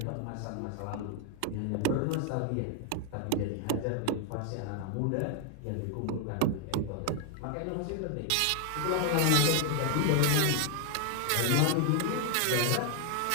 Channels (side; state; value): both; different; correlation 0.00